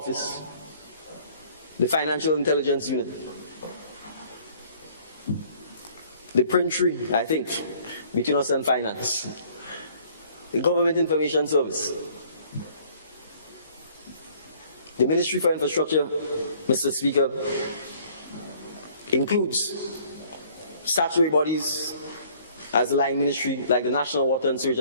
the Financial Intelligence Unit, the print tree, I think, between us and finance, the Government Information Service, the Ministry for Infrastructure, Mr. Speaker, includes statutory bodies as the line ministry like the National Water and Sewage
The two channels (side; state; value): both; inverted; correlation -0.57